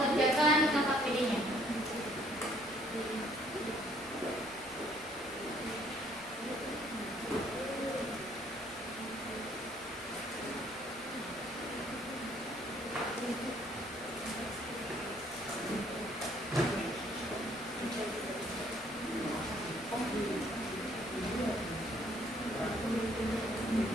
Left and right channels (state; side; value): noise; left; rumble, 25 dB below the sound